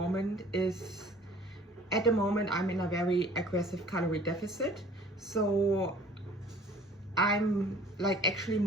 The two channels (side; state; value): both; normal; correlation 0.51